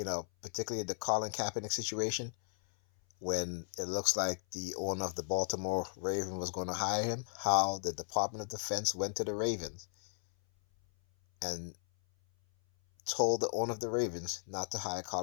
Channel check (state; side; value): silent; right; 54 dB below the other